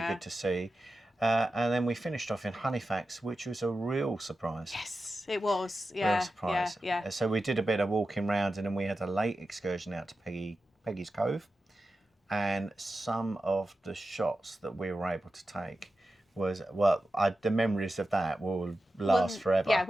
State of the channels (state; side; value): normal; both; correlation 0.92